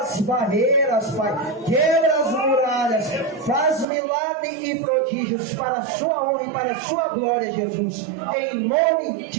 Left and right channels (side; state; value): left; drops out; at 3.9 s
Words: barreiras, Pai. Quebra as muralhas. Faz milagres e prodígios para a sua honra e para a sua glória, Jesus. Em nome